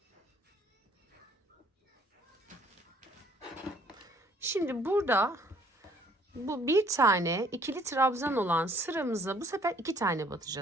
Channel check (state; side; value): normal; both; correlation 0.60